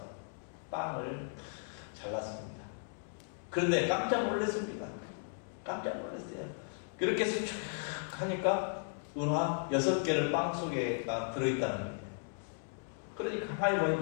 빵을 잘랐습니다. 그런데 깜짝 놀랐습니다. 깜짝 놀랐어요. 그렇게 해서 쭉 하니까 은화 6개를 빵 속에가 들어있다는 거예요. 그러니까 가만히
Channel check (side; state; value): right; silent; digital silence